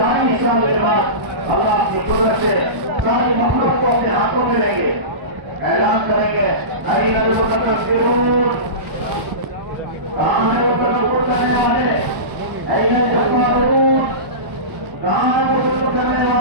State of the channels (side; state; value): left; late; 1.0 ms